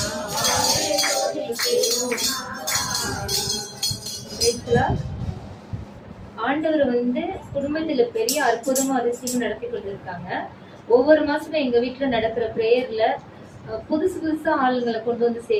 ஆண்டவர் வந்து குடும்பத்துல பெரிய அற்புதமும் அதிசயமும் நடத்தி கொண்டிருக்காங்க. ஒவ்வொரு மாசமும் எங்க வீட்டுல நடக்கிற பிரேயர்ல புதுசு புதுசா ஆளுங்களை கொண்டு வந்து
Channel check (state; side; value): identical; both; correlation 1.00